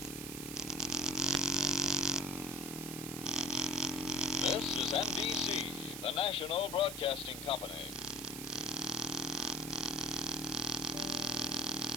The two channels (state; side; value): noise; right; hiss, 8 dB below the sound